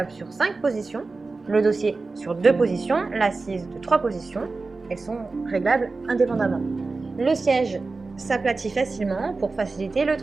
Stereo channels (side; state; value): left; quieter; 3.8 dB